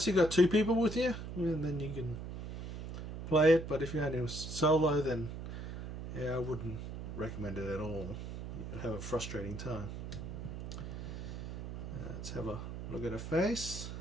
you got two people with you, and then you can play it. But if you're only solo, then yeah, I wouldn't recommend it at all. You'll have a frustrating time. Let's have a look at her face.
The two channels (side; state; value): right; noise; hum, 7 dB below the sound